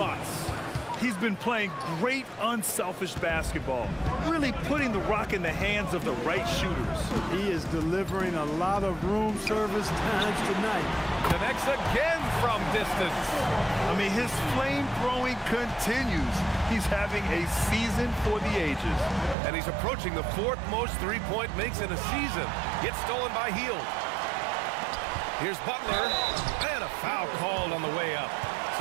He's been playing great unselfish basketball, really putting the rock in the hands of the right shooters. He is delivering a lot of room service times tonight. Connects again from distance. I mean, his flame throwing continues. He's having a season for the ages. And he's approaching the 4th most three-point makes in a season. Gets stolen by Hield. Here's Butler, and a foul called on the way up.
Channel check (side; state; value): left; drops out; at 19.4 s